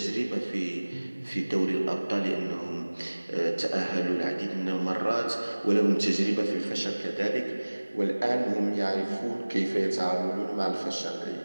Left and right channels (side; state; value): both; inverted; correlation -1.00